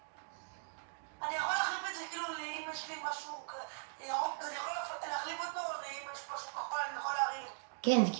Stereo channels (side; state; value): left; silent; digital silence